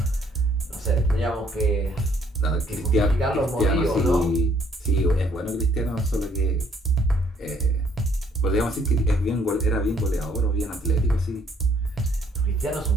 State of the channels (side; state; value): both; normal; correlation 0.65